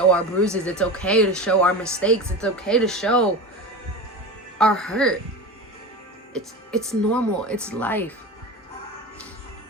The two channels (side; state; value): both; normal; correlation 0.28